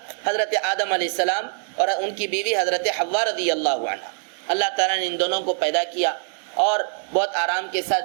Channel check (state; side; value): silent; left; digital silence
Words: حضرت آدم علیہ السلام اور ان کی بیوی حضرت حوا رضی اللہ عنہ. اللہ تعالیٰ نے ان دونوں کو پیدا کیا اور بہت آرام کے